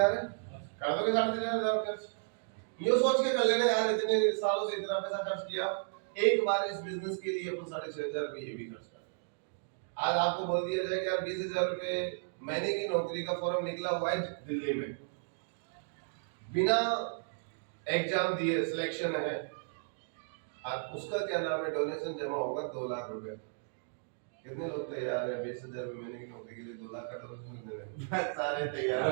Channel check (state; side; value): silent; left; digital silence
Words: है? कर दोगे 3,500 खर्च? ये सोच के कर लेना यार, इतने सालों से इतना पैसा खर्च किया, एक बार इस बिजनेस के लिए अपन 6,500 रुपये ये भी खर्च कर। आज आपको बोल दिया जाए कि यार 20,000 रुपये महीने की नौकरी का फॉर्म निकला हुआ है दिल्ली में, बिना एग्जाम दिए सिलेक्शन है, आप उसका क्या नाम है, डोनेशन जमा होगा 2 लाख रुपए। कितने लोग तैयार हैं 20,000 रुपये महीने की नौकरी के लिए 2 लाख का डोनेशन देने? सारे तैयार